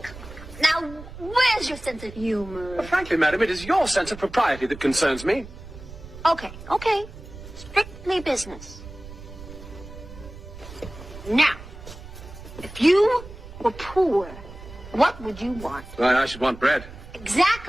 now, where's your sense of humor? Frankly, madam, it is your sense of propriety that concerns me. Okay. Strictly business. Now, if you were poor, what would you want? Well, I should want bread.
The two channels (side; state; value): right; noise; rumble, 15 dB below the sound